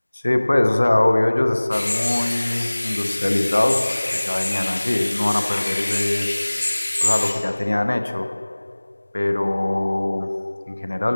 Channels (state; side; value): inverted; both; correlation -1.00